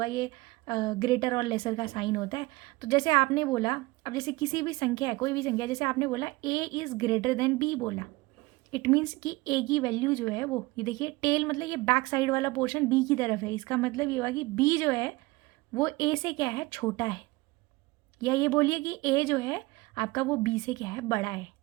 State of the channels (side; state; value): left; quieter; 22.0 dB